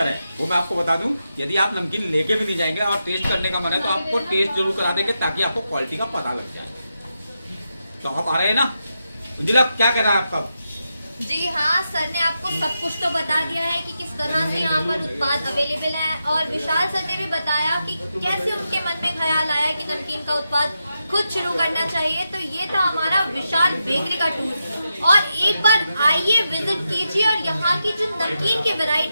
है वो मैं आपको बता दूं, यदि आप नमकीन लेके भी नहीं जाएंगे और टेस्ट करने का मन है तो आपको टेस्ट जरूर करा देंगे ताकि आपको क्वालिटी का पता लग जाए। तो आप आ रहे हैं ना? अंजुला क्या कह रहा है आपका? जी हाँ, सर ने आपको सब कुछ तो बता दिया है कि किस तरह से यहाँ पर उत्पाद अवेलेबल है, और विशाल सर ने भी बताया कि कैसे उनके मन में ख्याल आया कि नमकीन का उत्पाद खुद शुरू करना चाहिए। तो ये था हमारा विशाल बेकरी का टूर, और एक बार आइए, विजिट कीजिए और यहाँ की जो नमकीन की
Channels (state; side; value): inverted; both; correlation -0.87